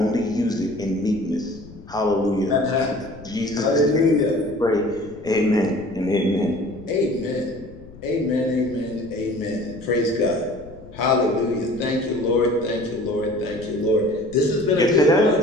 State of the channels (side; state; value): left; noise; rumble, 19 dB below the sound